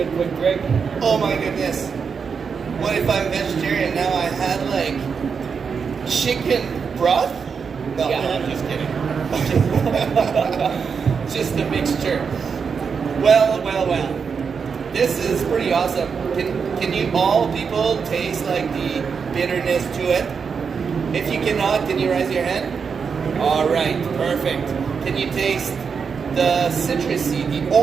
quick drink. Oh my goodness. What if I'm vegetarian now? I had like chicken broth? No, Yeah. I'm just kidding. Just a mixture. Well. This is pretty awesome. Can you all people taste like the bitterness to it? If you cannot, can you raise your hand? All right, perfect. Can you taste the citrusy, the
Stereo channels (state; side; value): quieter; left; 6.0 dB